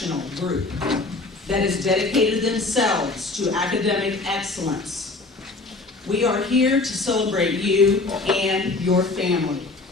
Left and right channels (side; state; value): right; quieter; 3.5 dB